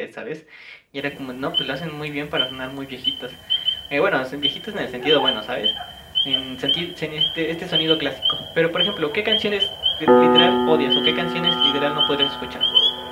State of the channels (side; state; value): both; identical; correlation 1.00